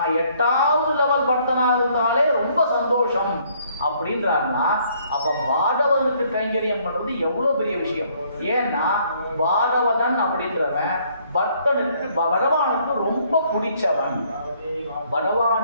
8வது லெவல் பக்தனா இருந்தாலே ரொம்ப சந்தோஷம் அப்படின்றாருன்னா, அப்ப பாகவதனுக்கு கைங்கரியம் பண்றது எவ்வளவு பெரிய விஷயம். ஏன்னா பாகவதன் அப்படின்றவன் பக்தனுக்கு பகவானுக்கு ரொம்ப பிடிச்சவன்.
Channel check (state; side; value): inverted; both; correlation -0.65